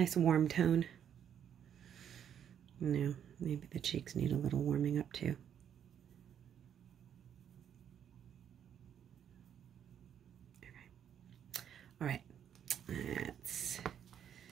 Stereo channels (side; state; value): left; quieter; 9.1 dB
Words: warm tone. No, maybe the cheeks need a little warming up too. Okay. All right. Let's